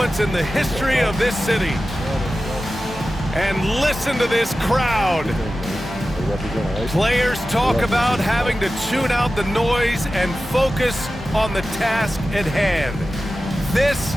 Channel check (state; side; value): normal; both; correlation 0.94